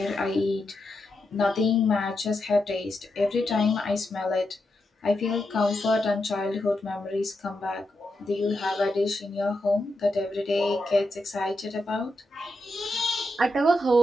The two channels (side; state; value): both; normal; correlation 0.85